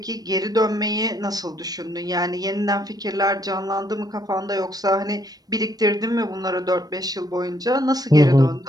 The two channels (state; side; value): late; left; 0.19 ms